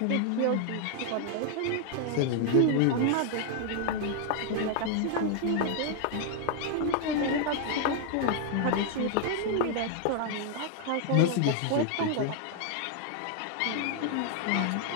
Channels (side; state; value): both; different; correlation 0.00